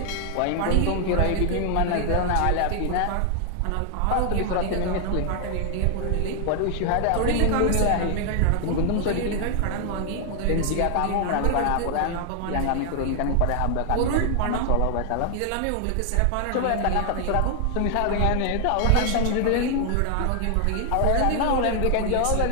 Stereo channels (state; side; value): different; both; correlation 0.00